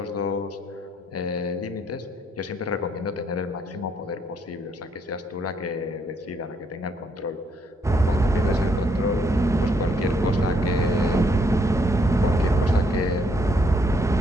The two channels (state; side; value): normal; both; correlation 0.72